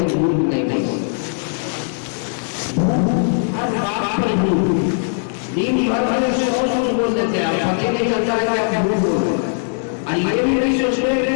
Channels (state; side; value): silent; right; digital silence